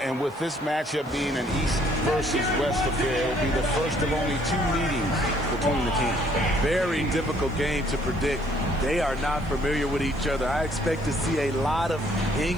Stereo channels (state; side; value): noise; left; hiss, 29 dB below the sound